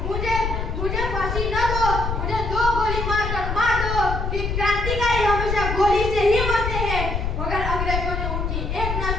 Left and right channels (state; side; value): noise; left; rumble, 2 dB below the sound